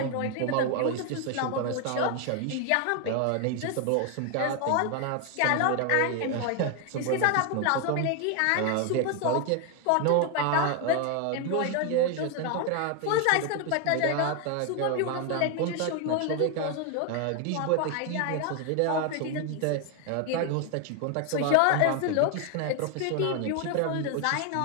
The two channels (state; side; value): different; both; correlation 0.01